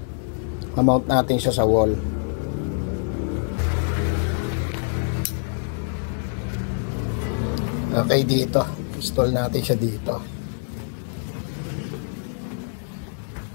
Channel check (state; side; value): silent; right; digital silence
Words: Mount natin siya sa wall. Okay, dito. Install natin siya dito.